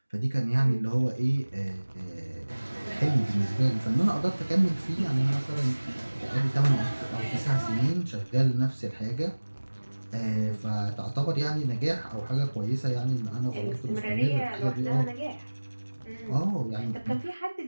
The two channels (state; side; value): inverted; both; correlation -1.00